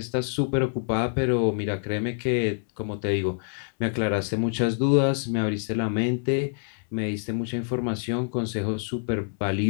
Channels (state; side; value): silent; right; 61 dB below the other